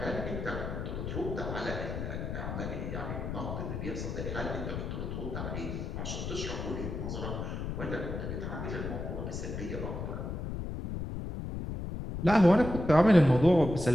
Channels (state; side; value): noise; left; rumble, 5 dB below the sound